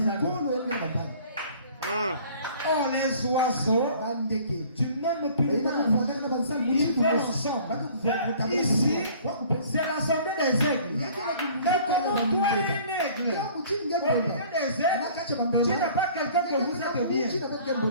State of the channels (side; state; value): both; inverted; correlation -0.51